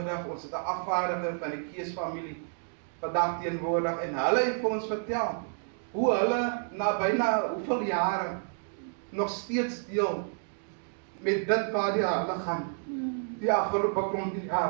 ons het 'n afvaardiger van die Keesfamilie vandag teenwoordig, en hulle het vir ons vertel, hoe hulle na byna hoeveel jare nog steeds deel met dit waar die hulle gaan, die afgelope klompie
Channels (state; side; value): silent; left; 58 dB below the other